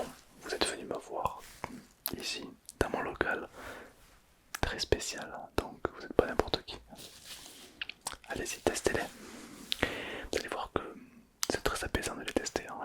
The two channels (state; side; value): identical; both; correlation 1.00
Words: vous êtes venu me voir ici, dans mon local, très spécial, donc vous n'êtes pas n'importe qui. Allez-y, testez-les. Vous allez voir que c'est très apaisant de les tester, hein,